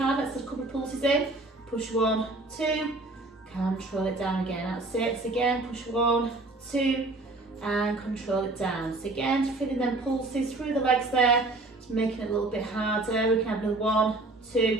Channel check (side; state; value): left; quieter; 3.0 dB